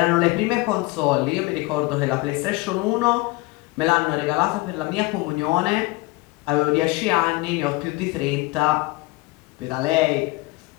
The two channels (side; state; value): right; quieter; 21.9 dB